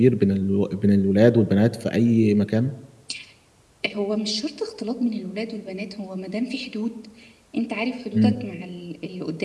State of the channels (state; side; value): identical; both; correlation 1.00